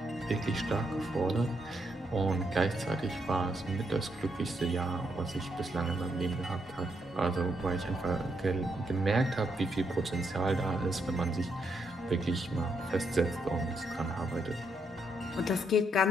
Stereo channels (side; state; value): both; normal; correlation 0.78